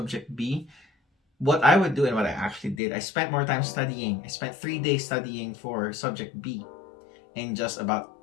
B, what I would do and what I actually did, I spent more time studying. I spent 3 days studying for subject B and just about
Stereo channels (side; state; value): right; drops out; at 2.8 s